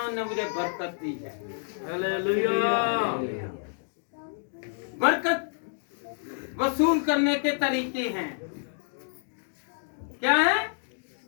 ने मुझे बरकत दी है। हालेलुया। बरकत वसूल करने के तरीके हैं। क्या है?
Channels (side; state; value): right; silent; 59 dB below the other